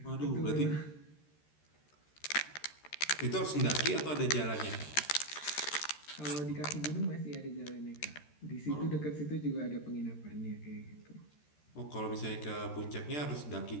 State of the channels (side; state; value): right; late; 13 ms